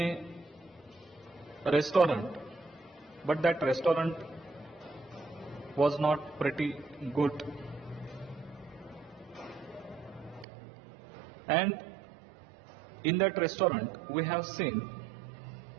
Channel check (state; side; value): drops out; left; at 10.5 s